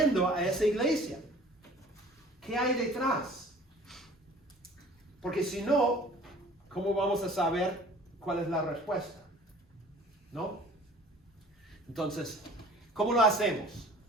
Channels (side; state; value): both; normal; correlation 0.49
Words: a esa iglesia? ¿Qué hay detrás? Porque si no, ¿cómo vamos a saber cuál es la respuesta? ¿No? Entonces, ¿cómo lo hacemos?